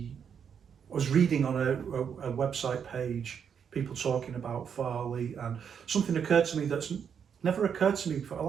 reading on a website page, people talking about Thr3, and something occurred to me that's never occurred to me before.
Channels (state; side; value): quieter; left; 7.4 dB